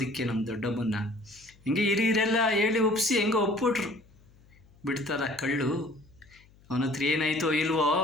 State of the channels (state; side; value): noise; left; hum, 28 dB below the sound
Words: ನಮ್ಮ ದೊಡ್ಡಮ್ಮನ್ನ. ಹಿಂಗೆ ಹಿರಿಯರೆಲ್ಲ ಹೇಳಿ ಒಪ್ಪಿಸಿ ಹೆಂಗೋ ಒಪ್ಪಿಟ್ರು. ಬಿಡ್ತಾರ ಕಳ್ಳು, ಅವನ ಹತ್ರ ಏನಾಯ್ತೋ ಇಲ್ವೋ